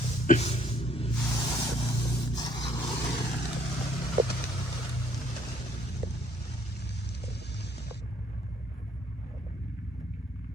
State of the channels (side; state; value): both; normal; correlation 0.64